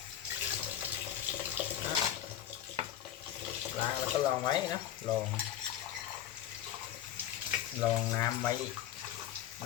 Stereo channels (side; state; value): right; quieter; 11.4 dB